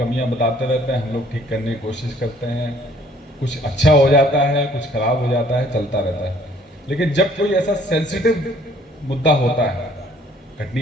बताते रहते हैं, हम लोग ठीक करने की कोशिश करते हैं। कुछ अच्छा हो जाता है, कुछ खराब हो जाता है, चलता रहता है। लेकिन जब कोई ऐसा सेंसिटिव मुद्दा होता है, कटनी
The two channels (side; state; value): both; normal; correlation 0.59